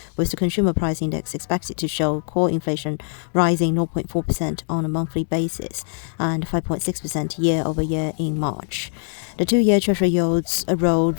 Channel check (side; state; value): right; silent; digital silence